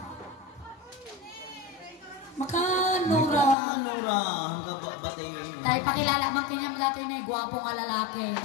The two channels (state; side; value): drops out; right; at 3.6 s